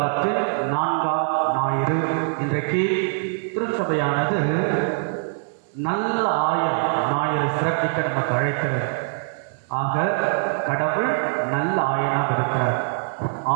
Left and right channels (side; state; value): left; silent; digital silence